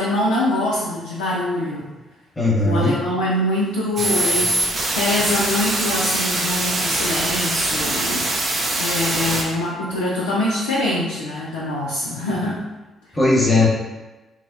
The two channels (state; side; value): normal; both; correlation 0.62